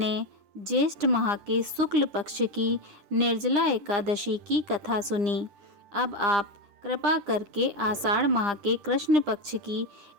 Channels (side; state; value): left; late; 9.9 ms